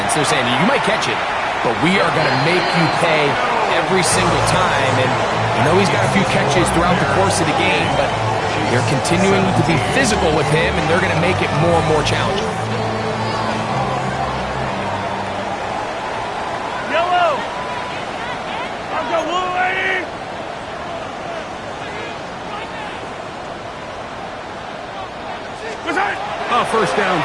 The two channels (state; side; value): identical; both; correlation 1.00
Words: They're saying, you might catch it, but we are going to make you pay every single time. And I know he's got a few catches throughout the course of the game, but they're continuing to be physical with him, and they're going to make it more and more challenging. A first down